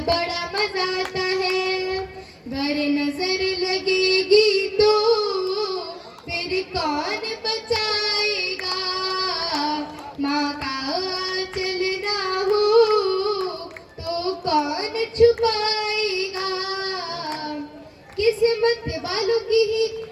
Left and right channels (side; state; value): both; identical; correlation 1.00